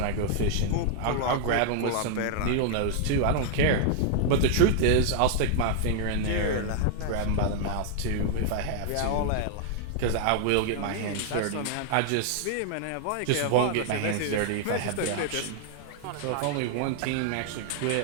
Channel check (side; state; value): both; different; correlation 0.00